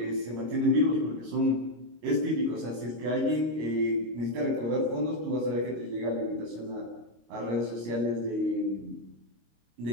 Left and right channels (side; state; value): left; late; 25 ms